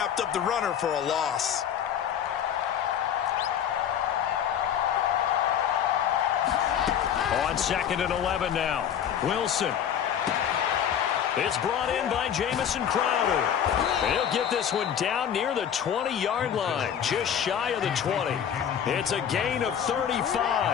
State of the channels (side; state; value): right; quieter; 9.0 dB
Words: up the runner for a loss. On 2nd and 11 now, Wilson. It's brought in by Jamison Crowder. He'll get this one down near the 20-yard line, just shy of the 20. It's a gain of